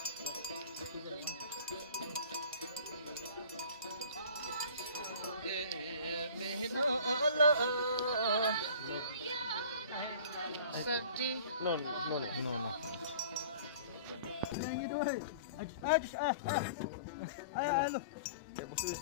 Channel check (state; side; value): inverted; both; correlation -0.44